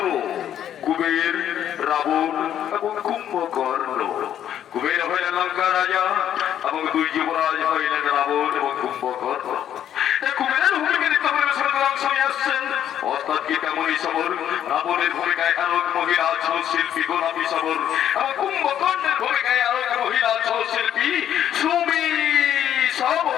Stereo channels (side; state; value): right; quieter; 10.4 dB